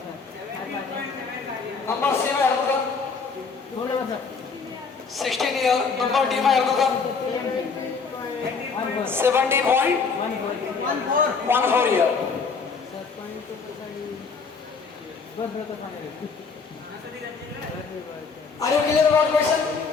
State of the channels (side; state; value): right; quieter; 5.1 dB